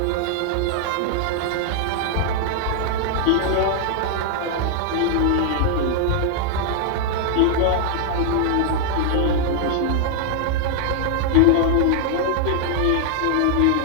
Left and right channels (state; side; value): different; both; correlation -0.01